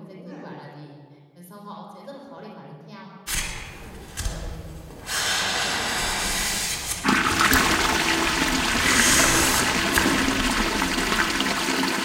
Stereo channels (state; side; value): identical; both; correlation 1.00